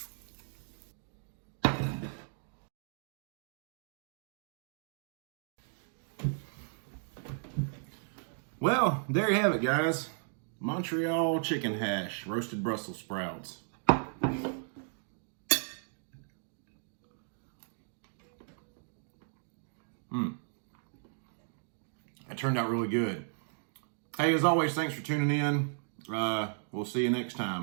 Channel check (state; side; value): silent; left; digital silence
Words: Well, there you have it, guys. Montreal chicken hash, roasted Brussels sprouts. turned out really good. Hey, as always, thanks for tuning in. We'll see you next